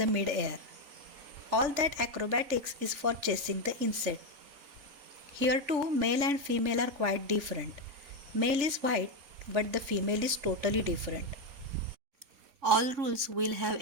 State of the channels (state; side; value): late; left; 3.5 ms